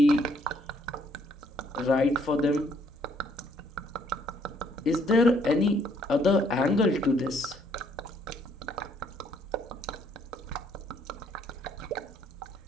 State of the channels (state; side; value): normal; both; correlation 0.67